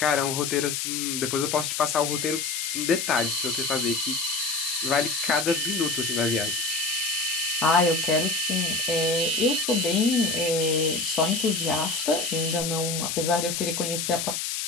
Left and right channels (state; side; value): noise; left; hiss, 2 dB below the sound